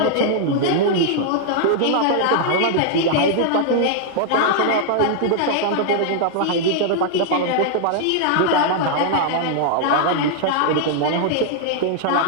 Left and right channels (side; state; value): both; different; correlation 0.00